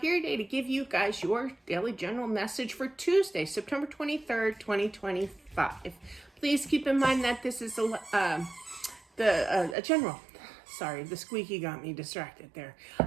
today to give you guys your daily general message for Tuesday, September 23rd, 2025. Please keep in mind that this is a general, sorry, the squeaky got me distracted there.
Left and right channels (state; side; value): drops out; left; at 9.8 s